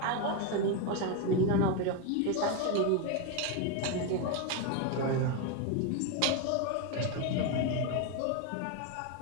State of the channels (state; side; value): different; both; correlation 0.02